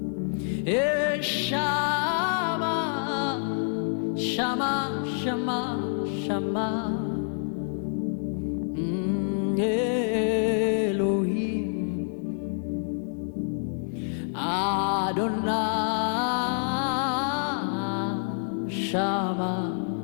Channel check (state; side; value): silent; right; 60 dB below the other